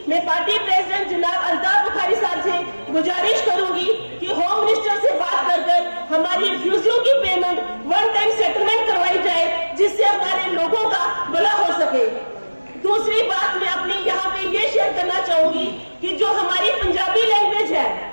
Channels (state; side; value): inverted; both; correlation -1.00